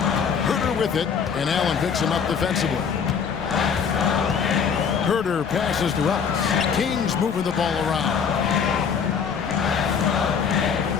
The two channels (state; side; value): quieter; right; 6.7 dB